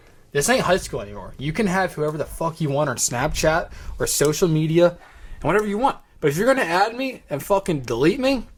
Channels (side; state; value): both; identical; correlation 1.00